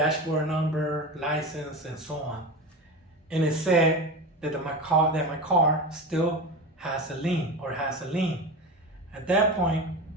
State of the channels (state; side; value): normal; both; correlation 0.26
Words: number, license, and so on. And it said that my car still has a lien, or has a lien. At that point,